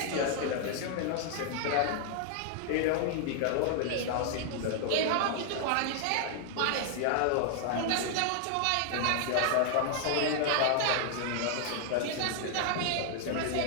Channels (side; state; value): both; different; correlation 0.00